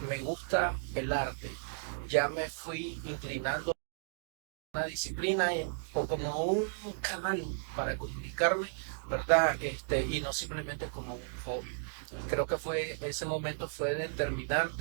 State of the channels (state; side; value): silent; left; digital silence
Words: me gusta el arte. Ya me fui inclinando a una disciplina o como un canal para comunicarme, ¿verdad? Y no simplemente como un hobby. Creo que ese momento fue